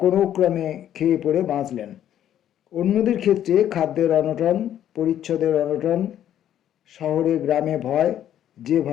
কোনো ক্রমে খেয়ে পড়ে বাঁচলেন। অন্যদের ক্ষেত্রে খাদ্যের অনটন, পরিচ্ছদের অনটন, শহরে গ্রামে ভয়, যে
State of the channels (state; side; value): quieter; right; 10.9 dB